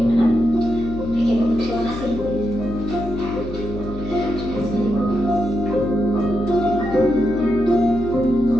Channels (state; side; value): noise; left; hum, 11 dB below the sound